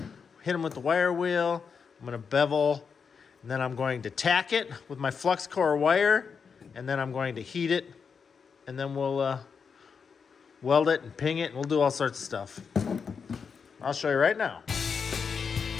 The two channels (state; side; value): quieter; right; 5.9 dB